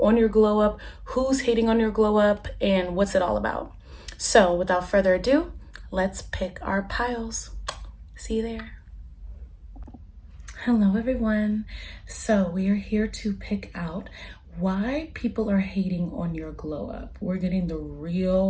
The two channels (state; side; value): identical; both; correlation 1.00